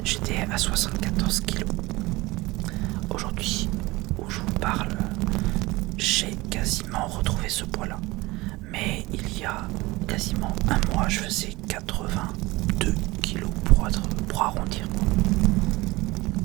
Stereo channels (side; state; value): left; quieter; 21.2 dB